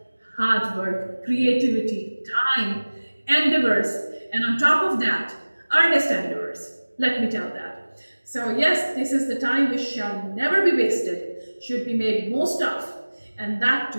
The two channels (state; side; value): inverted; both; correlation -1.00